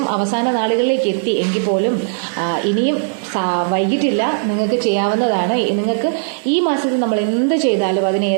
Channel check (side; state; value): left; silent; 66 dB below the other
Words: അവസാന നാളുകളിലേക്ക് എത്തി എങ്കിൽ പോലും ഇനിയും വൈകിട്ടില്ല, നിങ്ങൾക്ക് ചെയ്യാവുന്നതാണ്. നിങ്ങൾക്ക് ഈ മാസത്തിൽ നമ്മൾ എന്ത് ചെയ്താലും അതിന്